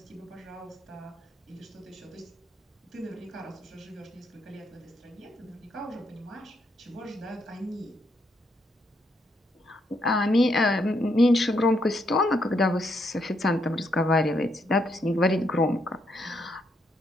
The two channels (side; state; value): both; normal; correlation 0.76